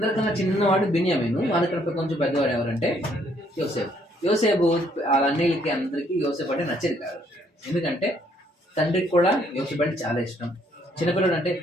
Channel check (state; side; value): normal; both; correlation 0.67